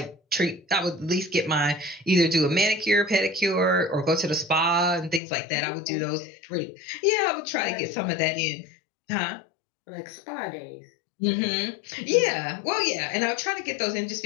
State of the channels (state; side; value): drops out; right; at 5.2 s